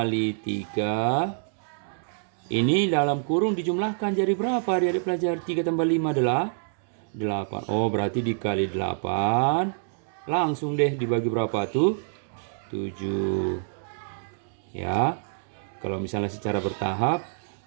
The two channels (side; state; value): left; silent; digital silence